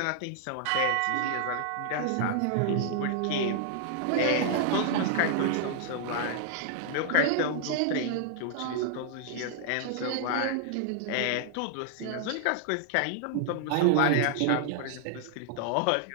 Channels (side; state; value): both; different; correlation -0.01